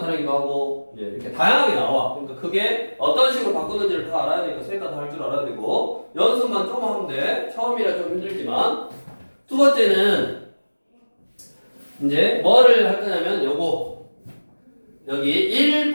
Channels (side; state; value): both; inverted; correlation -1.00